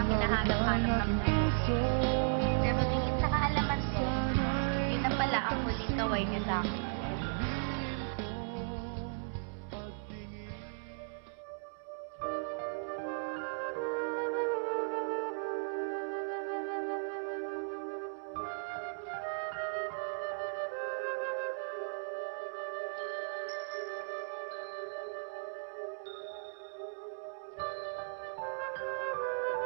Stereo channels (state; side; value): silent; left; digital silence